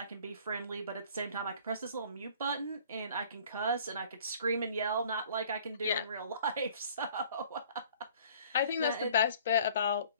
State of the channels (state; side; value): inverted; both; correlation -0.53